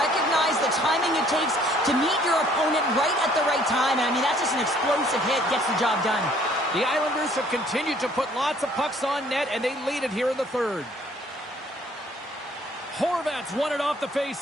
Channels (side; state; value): both; normal; correlation 0.60